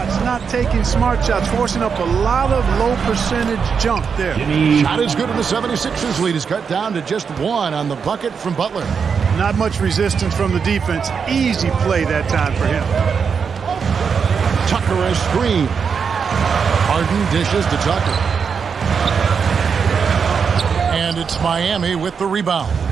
not taking smart shots, forcing up a lot of low percentage jump there. Shot is good, and the 76ers lead is cut down to just 1 on the bucket from Butler. Not much resistance from the defense. Easy play that time for him. Tucker a screen. Harden dishes to Tucker. And it's Miami with the rebound.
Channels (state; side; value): quieter; left; 6.2 dB